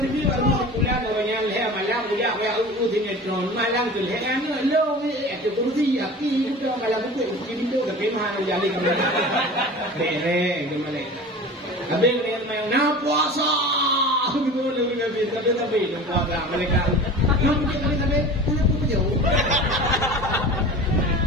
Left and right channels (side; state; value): both; normal; correlation 0.37